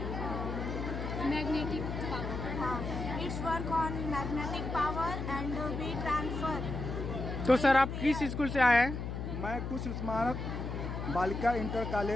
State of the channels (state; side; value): noise; left; hum, 4 dB below the sound